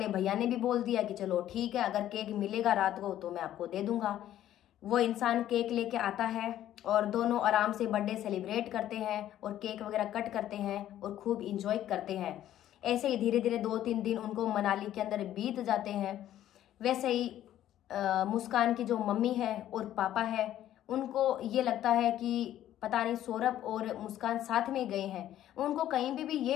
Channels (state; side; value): quieter; right; 12.3 dB